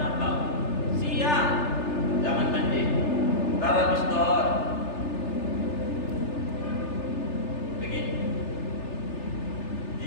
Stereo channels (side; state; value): right; late; 3.4 ms